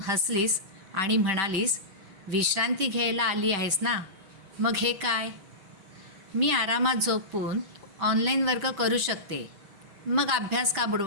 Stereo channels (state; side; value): late; left; 5.2 ms